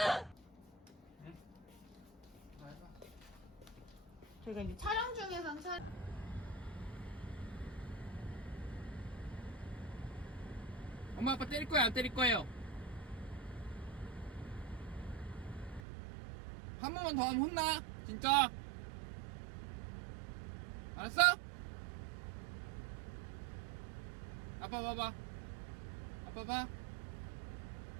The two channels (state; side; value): drops out; left; at 15.9 s